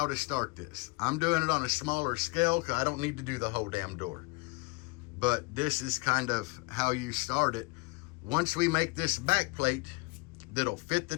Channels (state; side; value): quieter; right; 27.7 dB